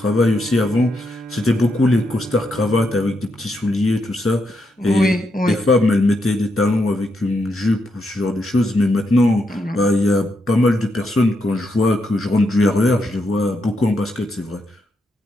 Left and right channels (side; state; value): both; normal; correlation 0.81